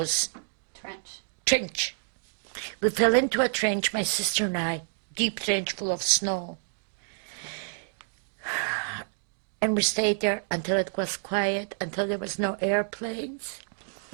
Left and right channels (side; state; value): left; silent; digital silence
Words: Trench. Trench. We fell into a trench, my sister and I, deep trench full of snow. And we stayed there until it was quiet, until there was no airplanes.